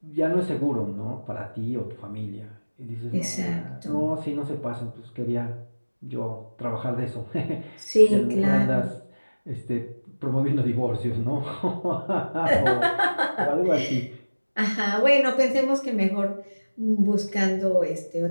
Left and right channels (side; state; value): both; inverted; correlation -1.00